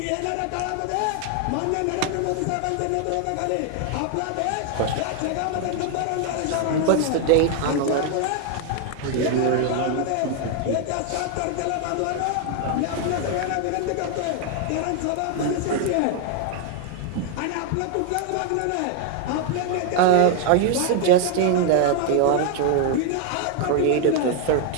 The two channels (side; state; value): both; different; correlation 0.00